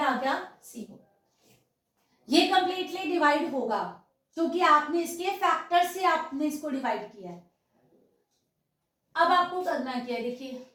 गया 0। ये कंप्लीटली डिवाइड होगा क्योंकि आपने इसके फैक्टर से आपने इसको डिवाइड किया है। अब आपको करना क्या है, देखिए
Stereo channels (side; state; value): both; identical; correlation 1.00